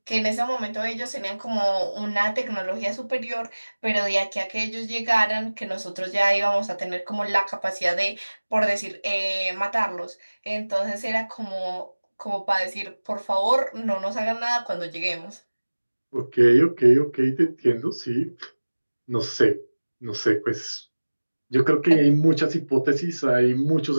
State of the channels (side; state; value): both; inverted; correlation -1.00